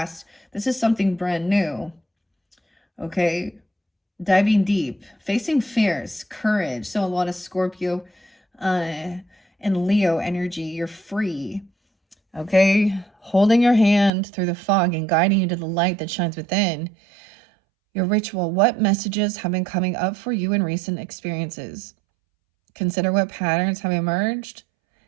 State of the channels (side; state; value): left; drops out; at 14.1 s